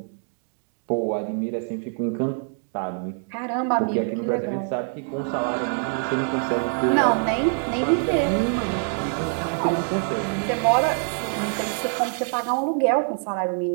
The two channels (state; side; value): silent; left; 56 dB below the other